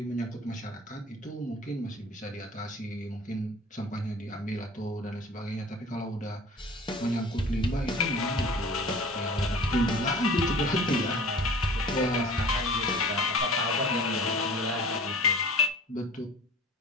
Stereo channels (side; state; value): both; normal; correlation 0.43